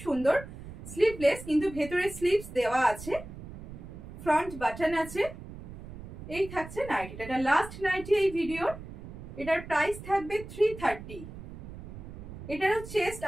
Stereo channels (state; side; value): noise; right; rumble, 13 dB below the sound